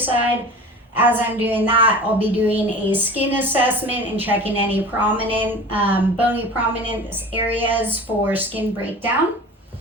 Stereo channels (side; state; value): both; normal; correlation 0.37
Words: As I'm doing that, I'll be doing a skin assessment and checking any prominent, bony prominent areas for skin breakdown.